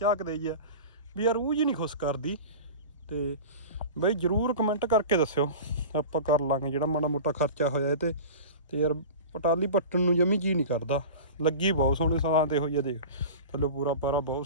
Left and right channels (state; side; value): inverted; both; correlation -0.33